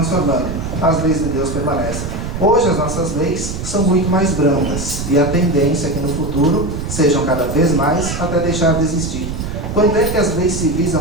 as leis de Deus permanecem. Hoje as nossas leis são muito mais brandas, e a tendência é que no futuro sejam cada vez mais até deixar de existir. Quando é que as leis civis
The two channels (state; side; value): noise; right; rumble, 5 dB below the sound